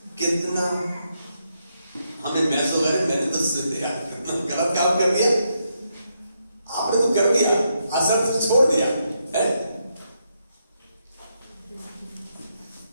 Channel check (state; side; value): inverted; both; correlation -0.81